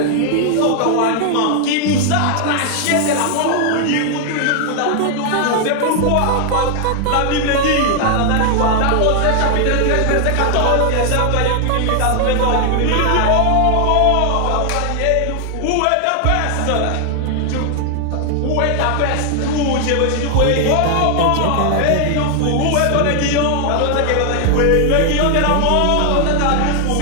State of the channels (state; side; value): different; both; correlation 0.00